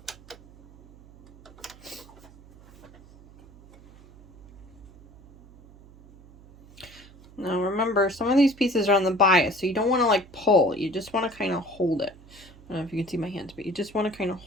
Now remember, some of these pieces are on the bias, so you don't want to like pull. You just want to kind of hold it. I don't know if you can see my hands, but you just want to kind of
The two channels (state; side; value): noise; right; hum, 23 dB below the sound